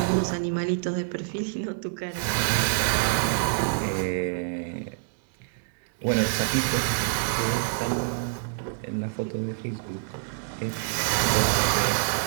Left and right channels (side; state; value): left; silent; digital silence